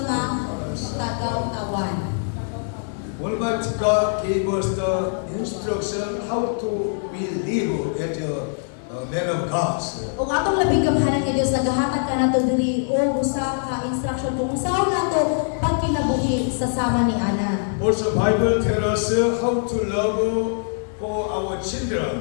nga tagaw-tawan. Almighty God gave us the instruction how to we live as a man of God. O atong labing gamhanan nga Dios nagahatag ka nato diri o usa ka instruction kung usaw nato pagkinabuhi sa sama ni Ana. Also, Bible tells us how to love for our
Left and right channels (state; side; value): silent; right; digital silence